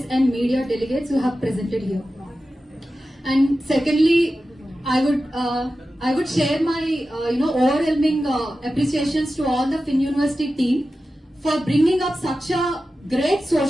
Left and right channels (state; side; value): normal; both; correlation 0.93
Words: and media delegates who have presented here. And secondly, I would share my overwhelming appreciations to all the Finn University team for bringing up such a great